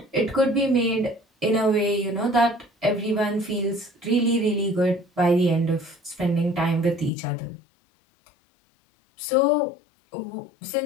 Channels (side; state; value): right; drops out; at 7.1 s